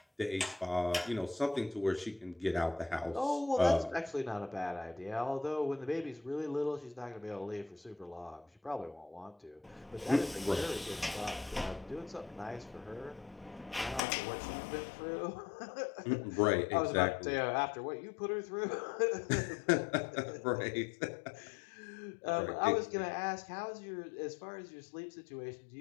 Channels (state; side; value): drops out; right; at 14.0 s